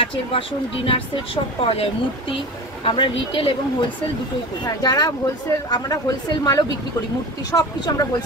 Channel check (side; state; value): both; normal; correlation 0.31